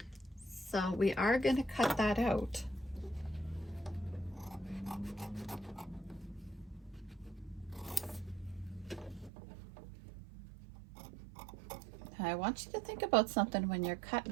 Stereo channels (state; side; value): drops out; left; at 9.3 s